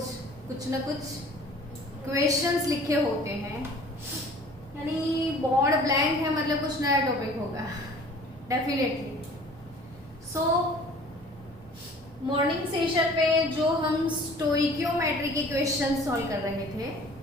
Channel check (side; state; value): both; normal; correlation 0.49